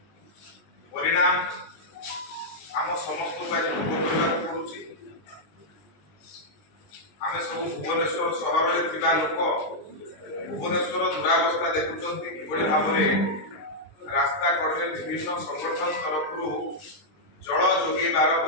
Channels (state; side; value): late; right; 20 ms